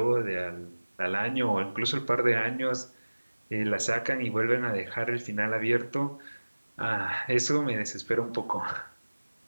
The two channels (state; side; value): inverted; both; correlation -1.00